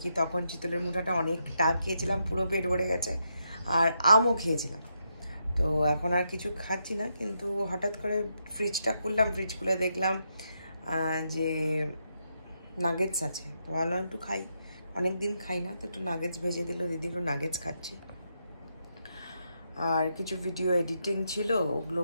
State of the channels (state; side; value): inverted; both; correlation -0.82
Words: কি তখন চিতলের মুঠাটা অনেকটা খেয়েছিলাম, পুরো পেট ভরে গেছে। আর আমও খেয়েছিলাম, তো এখন আর কিছু খাচ্ছি না। কিন্তু হঠাৎ করে ফ্রিজটা খুললাম, ফ্রিজ খুলে দেখলাম যে নাগেটস আছে, তো ভাবলাম একটু খাই, অনেক দিন খাই না, তো একটু নাগেটস ভেজে দিল দিদি, একটু নাগেটস খাচ্ছি। আর কিছু ভিডিও এডিটিং ছিল, ওগুলো